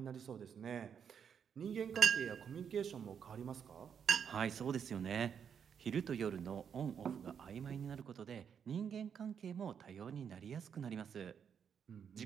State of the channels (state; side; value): quieter; left; 7.5 dB